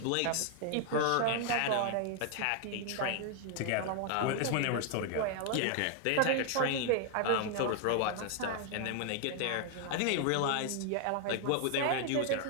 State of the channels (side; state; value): both; different; correlation 0.00